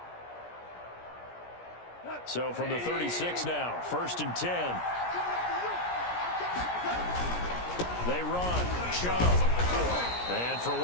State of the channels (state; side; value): late; right; 17 ms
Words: So from the 36 now, 1st and 10. They run. Chubb. And for